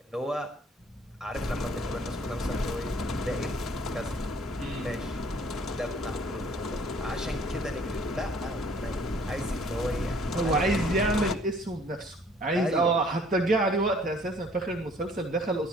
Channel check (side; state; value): both; normal; correlation 0.57